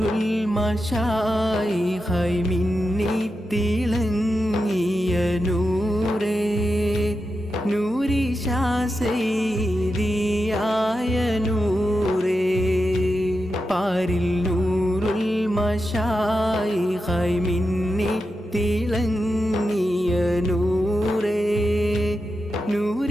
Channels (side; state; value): both; normal; correlation 0.89